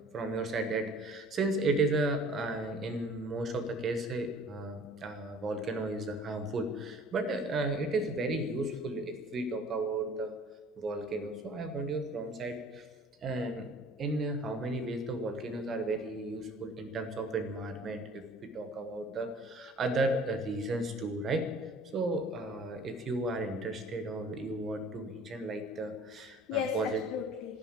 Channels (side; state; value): both; normal; correlation 0.50